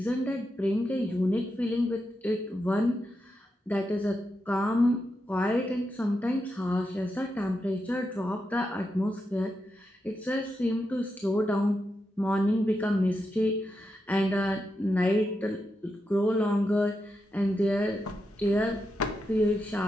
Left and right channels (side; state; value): both; normal; correlation 0.86